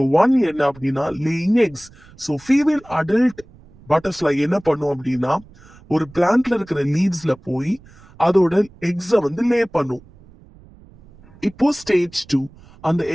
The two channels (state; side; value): noise; right; rumble, 24 dB below the sound